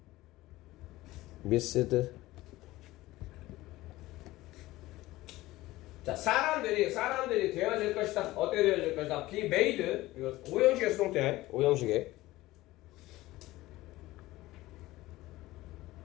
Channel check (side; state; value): right; quieter; 17.8 dB